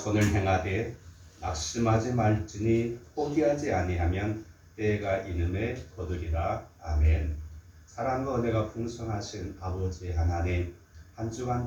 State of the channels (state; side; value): identical; both; correlation 1.00